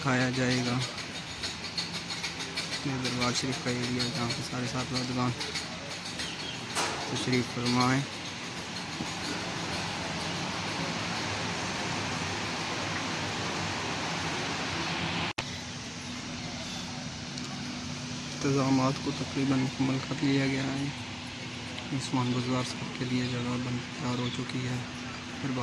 जाएगा दरबार शरीफ का एरिया, जहाँ पे सारे साहबजादगान तशरीफ़ फरमाएँ। इंतज़ामात को तकरीबन मुकम्मल कर लिया गया है। उस्मान बुज़दार साहब के लिए जगह तैयार हो चुकी है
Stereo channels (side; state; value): both; identical; correlation 1.00